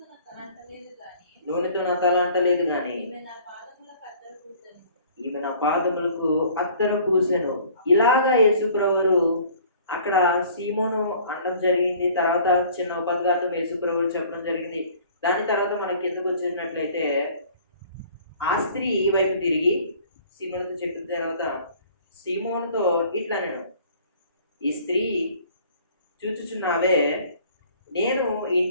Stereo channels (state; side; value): inverted; both; correlation -0.52